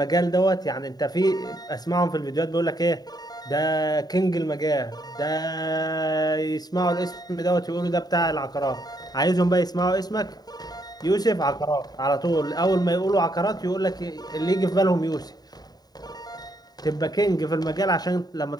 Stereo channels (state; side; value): late; right; 0.19 ms